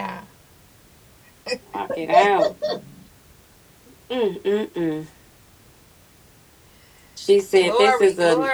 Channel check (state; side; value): identical; both; correlation 1.00